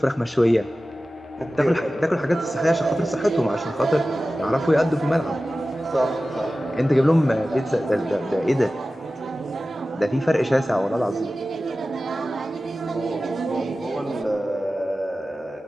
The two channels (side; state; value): both; normal; correlation 0.95